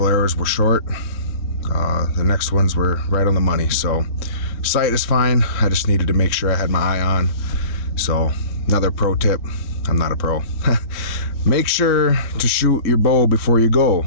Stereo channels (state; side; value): late; right; 3.7 ms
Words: arrows were short. The next ones were right on the money. So sight is fine. I just needed to make sure I had my eye on. So another pro tip. I'm not a pro. Make sure to shoot your bow before you go.